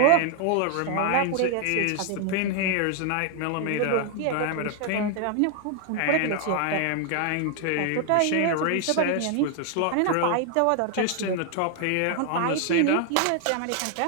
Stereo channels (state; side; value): different; both; correlation 0.00